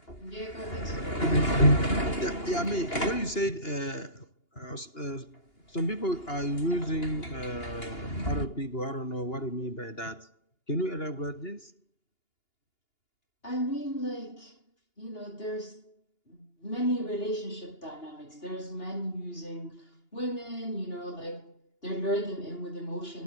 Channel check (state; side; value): late; right; 2.8 ms